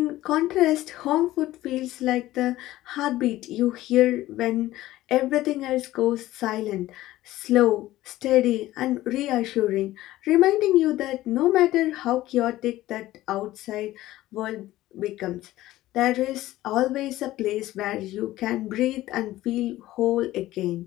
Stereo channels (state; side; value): quieter; right; 15.8 dB